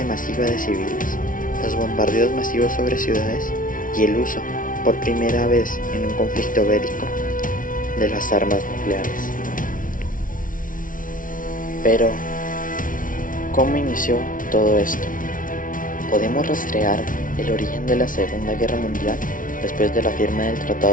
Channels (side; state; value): right; late; 0.39 ms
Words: masiva de civiles, los bombardeos masivos sobre ciudades y el uso, por primera vez en un conflicto bélico, de las armas nucleares. Pero, ¿cómo inició todo esto? Podemos rastrear el origen de la Segunda Guerra Mundial después de la firma del